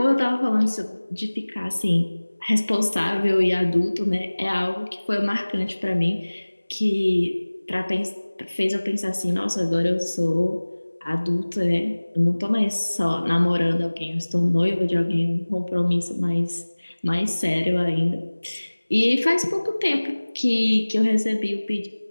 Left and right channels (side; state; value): both; inverted; correlation -1.00